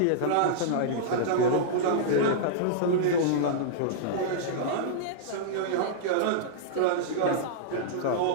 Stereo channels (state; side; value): different; both; correlation -0.02